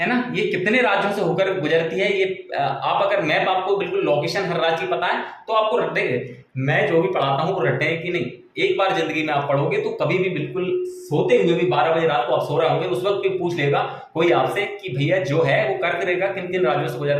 है ना, ये कितने राज्यों से होकर गुजरती है। ये आप अगर मैप, आपको बिल्कुल लोकेशन हर राज्य की पता है तो आपको रटेंगे, मैं जो भी पढ़ाता हूँ वो रटे कि नहीं, एक बार जिंदगी में आप पढ़ोगे तो कभी भी बिल्कुल सोते हुए भी 12 बजे रात को आप सो रहे होंगे, उस वक्त भी पूछ लेगा कोई आपसे कि भैया जो है वो कर्क रेखा किन किन राज्यों से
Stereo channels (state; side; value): identical; both; correlation 1.00